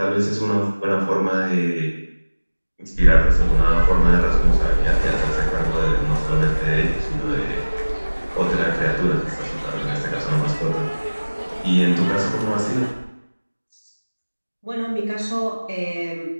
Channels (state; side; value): inverted; both; correlation -1.00